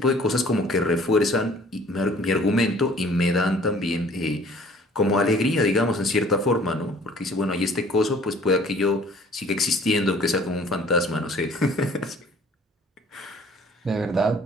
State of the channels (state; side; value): normal; both; correlation 0.53